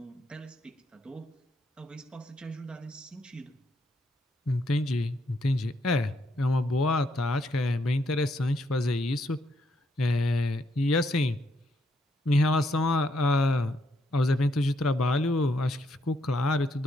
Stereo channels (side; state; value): both; normal; correlation 0.75